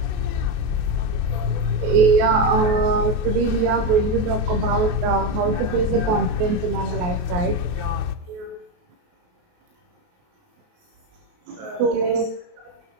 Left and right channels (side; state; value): left; late; 28 ms